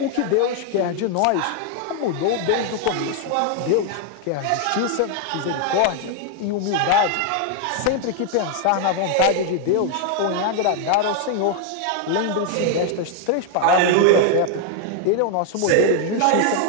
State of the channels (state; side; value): different; both; correlation 0.00